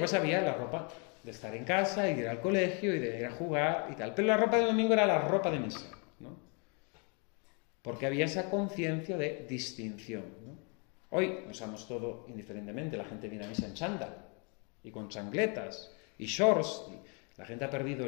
había la ropa de estar en casa y de ir al colegio y de ir a jugar y tal. Pero la ropa del domingo era la ropa de misa, ¿no? Porque había esa conciencia de distinción, ¿no? Hoy usamos todo indiferentemente. La gente viene a misa en chándal y con chancletas y shorts. La gente ha perdido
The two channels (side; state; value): right; quieter; 35.6 dB